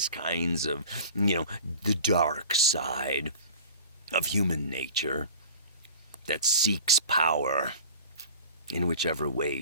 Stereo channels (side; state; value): both; inverted; correlation -0.40